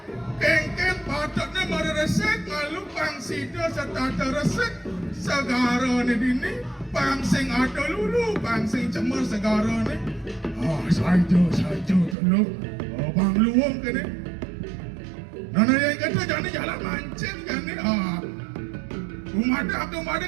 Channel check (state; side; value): drops out; left; at 12.2 s